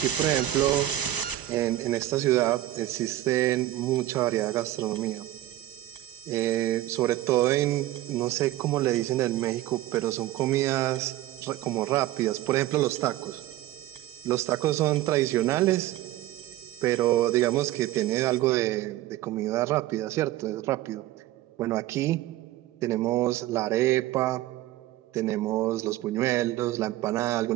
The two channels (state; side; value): quieter; left; 14.9 dB